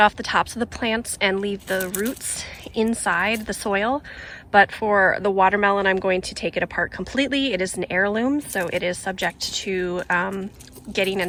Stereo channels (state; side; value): identical; both; correlation 1.00